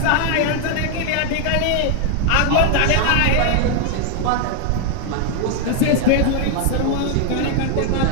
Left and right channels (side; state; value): both; different; correlation 0.00